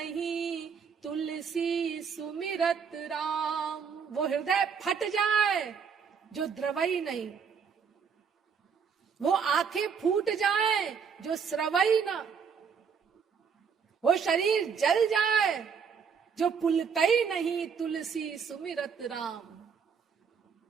तुलसी सुमिरत राम। वो हृदय फट जाए जो द्रवई नहीं, वो आंखें फूट जाए जो स्रवई ना, वो शरीर जल जाए जो पुलकई नहीं तुलसी सुमिरत राम।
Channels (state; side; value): quieter; left; 6.4 dB